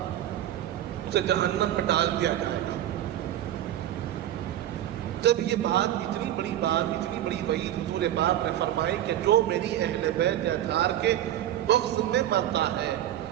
اسے جہنم میں ڈال دیا جائے گا۔ جب یہ بات اتنی بڑی وعید حضور پاک نے فرمائی کہ جو میری اہل بیت اطہار کے بغض میں پڑتا ہے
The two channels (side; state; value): left; quieter; 12.1 dB